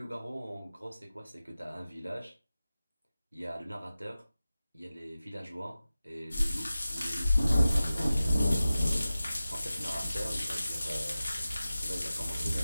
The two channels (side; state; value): both; inverted; correlation -0.96